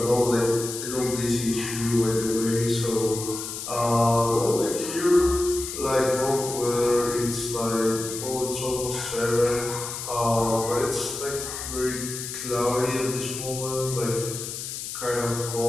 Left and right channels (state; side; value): noise; left; hiss, 7 dB below the sound